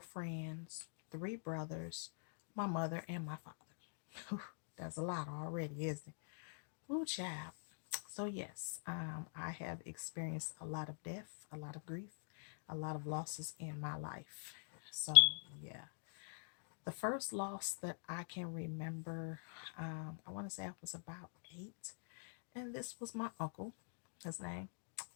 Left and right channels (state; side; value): silent; right; digital silence